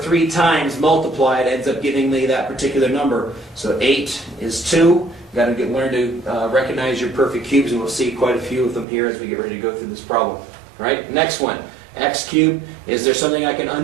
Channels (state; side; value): drops out; left; at 8.8 s